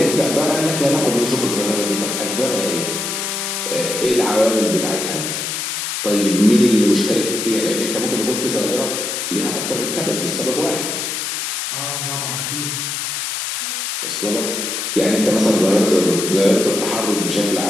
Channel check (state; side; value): noise; left; hiss, 3 dB below the sound